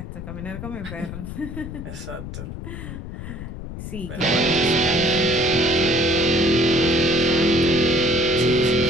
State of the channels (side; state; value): left; noise; rumble, 9 dB below the sound